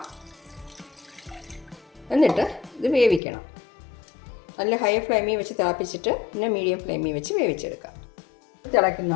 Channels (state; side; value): drops out; right; at 3.2 s